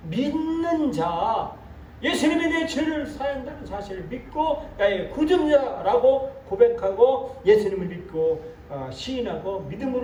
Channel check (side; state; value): both; identical; correlation 1.00